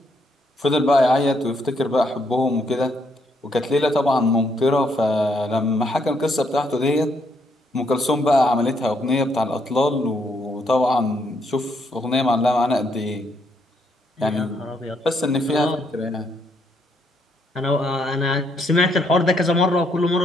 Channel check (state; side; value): normal; both; correlation 0.74